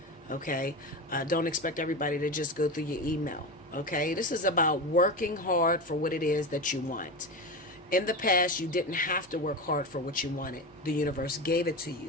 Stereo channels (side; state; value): both; normal; correlation 0.22